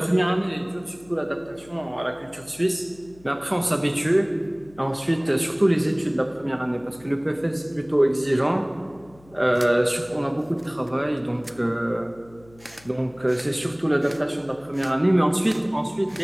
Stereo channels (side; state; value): left; noise; hum, 26 dB below the sound